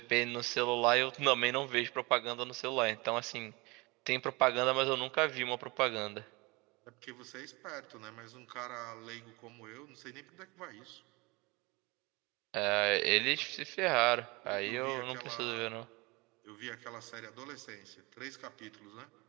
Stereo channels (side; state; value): left; quieter; 25.4 dB